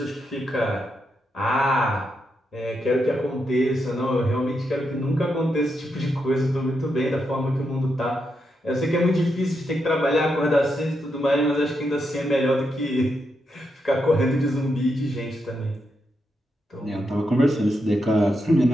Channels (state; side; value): normal; both; correlation 0.83